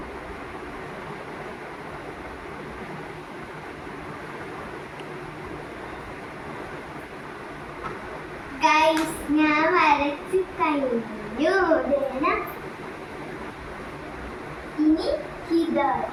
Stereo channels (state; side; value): identical; both; correlation 1.00